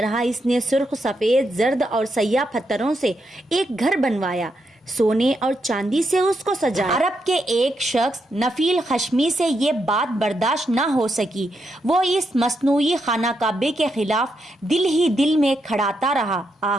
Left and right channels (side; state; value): both; normal; correlation 0.82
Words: اس نے سرخ، سفید، زرد اور سیاہ پتھروں سے ایک گھر بنوایا، سونے اور چاندی سے اس کو سجایا۔ عرب کے ایک شخص نفیل خشمی سے یہ بات برداشت نہ ہو سکی۔ وہ اس مصنوعی خانہ کعبے کے خلاف دل ہی دل میں کھڑاتا رہا۔